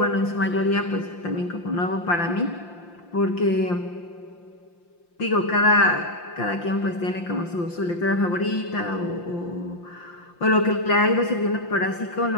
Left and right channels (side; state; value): right; late; 5.8 ms